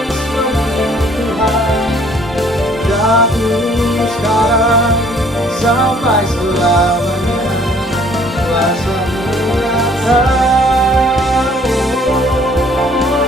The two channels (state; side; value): normal; both; correlation 0.58